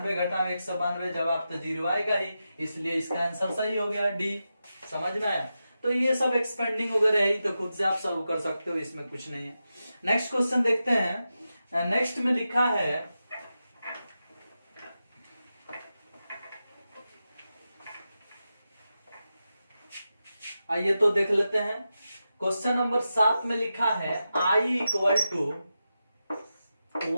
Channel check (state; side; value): inverted; both; correlation -0.90